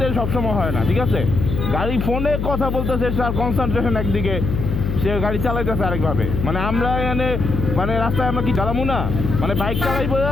সবসময় হয় না, ঠিক আছে? গাড়ি ফোনে কথা বলতেছে, তার কনসেন্ট্রেশন একদিকে, সে গাড়ি চালাইতেছে আরেকভাবে। মানে আমরা এখানে মানে রাস্তায় আমরা কি চালাবো না, মানে বাইক চালাইবো,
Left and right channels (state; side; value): noise; left; hum, 2 dB below the sound